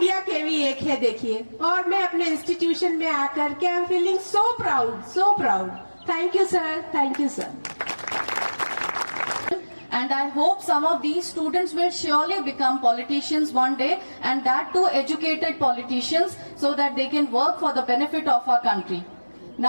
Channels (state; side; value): inverted; both; correlation -1.00